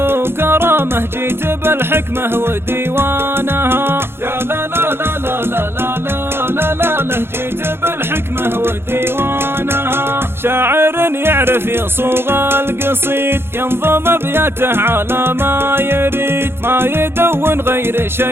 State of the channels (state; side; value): late; left; 0.11 ms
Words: جيت بالحكمة وديوانها، يا لا لا لا لا لا لا لا لا لا، جيت بالحكمة وديوانها. شاعر يعرف يصوغ القصيد، ينظم ابياته على ما يريد، ما يدون غير